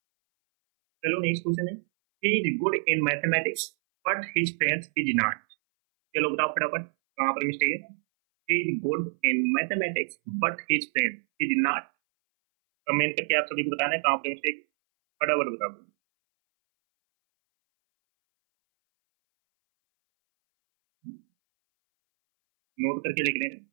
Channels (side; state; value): left; silent; 59 dB below the other